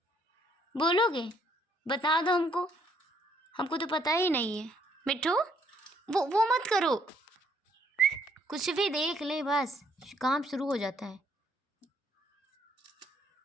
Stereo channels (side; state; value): both; normal; correlation 0.67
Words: बोलोगे? बता दो हमको, हमको तो पता ही नहीं है। मिट्टू वो मत करो, कुछ भी देख ले बस काम शुरू हो जाता है।